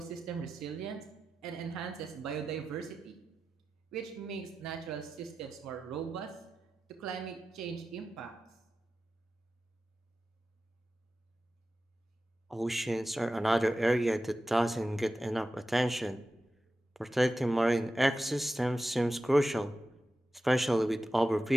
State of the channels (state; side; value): normal; both; correlation 0.93